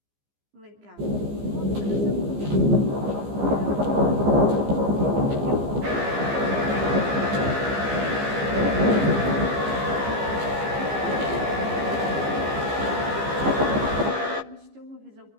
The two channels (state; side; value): late; left; 15 ms